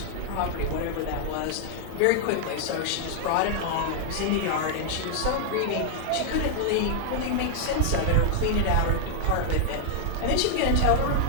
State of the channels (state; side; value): different; both; correlation -0.01